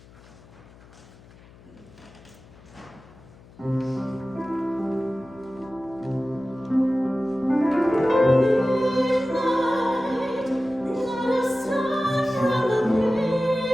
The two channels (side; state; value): left; noise; hum, 24 dB below the sound